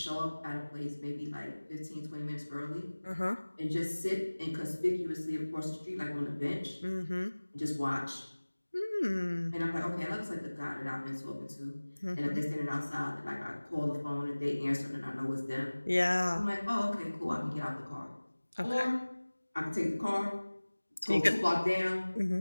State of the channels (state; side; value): inverted; both; correlation -1.00